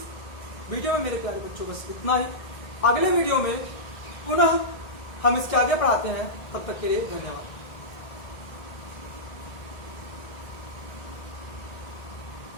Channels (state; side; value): late; right; 1.6 ms